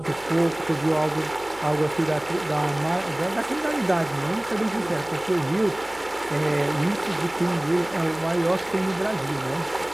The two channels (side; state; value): right; noise; hum, 23 dB below the sound